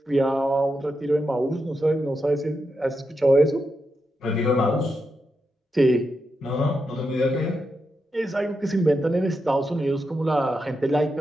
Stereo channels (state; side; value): normal; both; correlation 0.86